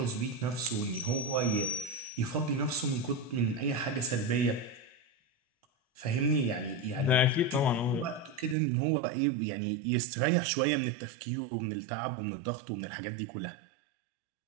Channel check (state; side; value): drops out; left; at 8.6 s